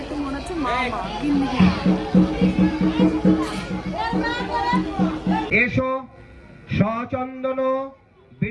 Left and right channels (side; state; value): both; identical; correlation 1.00